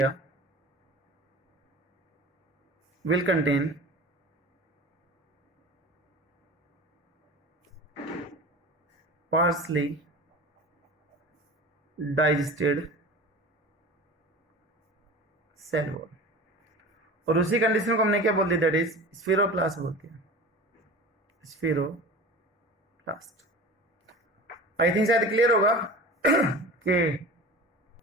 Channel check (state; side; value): normal; both; correlation 0.36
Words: will contain partially digested cell wall। और उसी कंडीशन को हमने क्या बोल दिया, दैट इज स्फीरोप्लास्ट बोलते हैं, स्फीरोप्लास्ट। आई थिंक शायद क्लियर होगा